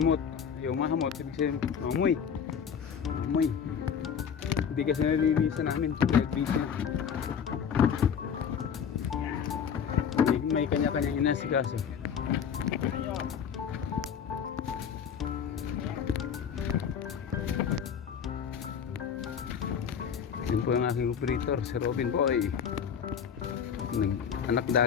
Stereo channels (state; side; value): quieter; right; 7.5 dB